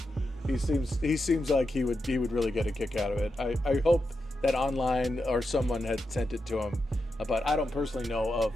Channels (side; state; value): both; normal; correlation 0.87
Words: He seems like he would really get a kick out of it. I hope that online or someone had sent it to him, but I don't personally know